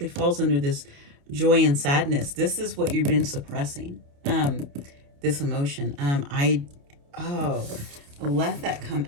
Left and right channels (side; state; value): left; late; 29 ms